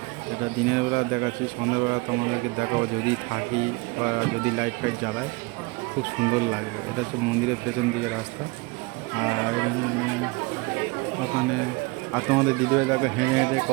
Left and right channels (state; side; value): quieter; left; 26.2 dB